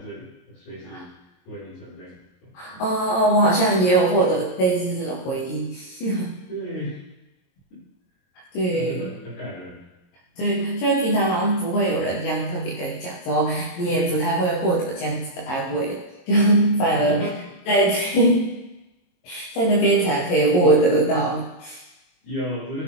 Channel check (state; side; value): late; right; 22 ms